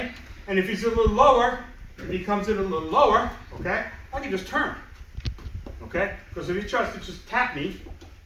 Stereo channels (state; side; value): identical; both; correlation 1.00